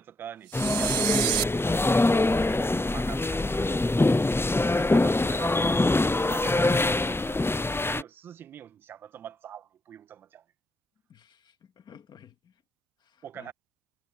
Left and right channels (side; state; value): both; normal; correlation 0.79